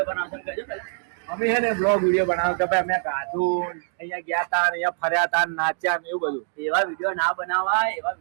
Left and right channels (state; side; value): silent; left; digital silence